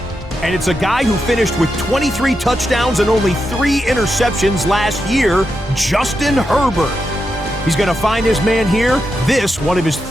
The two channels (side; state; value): both; normal; correlation 0.86